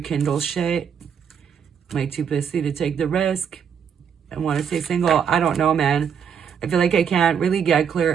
shit. Might too pussy to take the risk. I want to stay single. I don't know, man. I feel like I can't really get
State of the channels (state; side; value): quieter; left; 7.5 dB